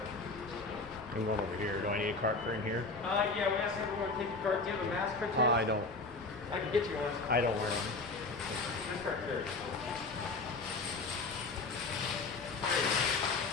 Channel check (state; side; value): quieter; right; 3.6 dB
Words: I'm going over here. Do I need a cart for in here? Yeah, we asked everyone to take your card. Do you have a mask for I don't. I can get you one. I don't wear them. This card here.